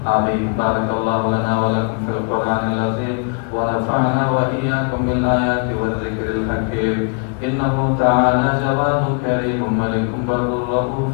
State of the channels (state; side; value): quieter; right; 39.1 dB